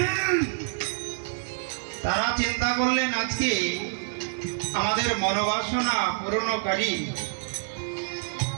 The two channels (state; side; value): silent; left; digital silence